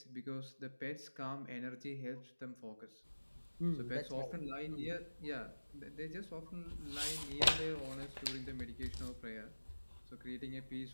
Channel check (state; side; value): inverted; both; correlation -1.00